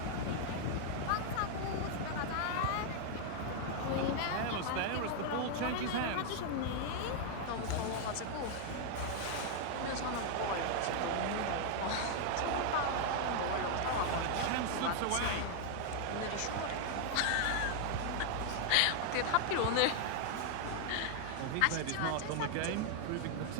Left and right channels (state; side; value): different; both; correlation 0.00